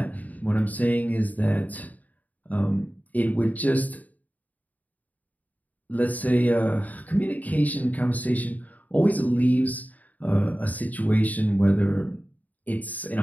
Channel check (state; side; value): late; right; 0.076 ms